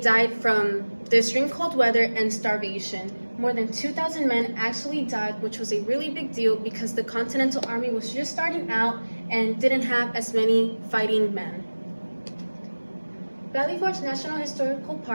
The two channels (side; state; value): both; inverted; correlation -1.00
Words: from the extreme cold weather and starvation. More than 2,000 men actually died, which was a really big deal because the Continental Army was just starting out and didn't have as many fighting men. Valley Forge National Historical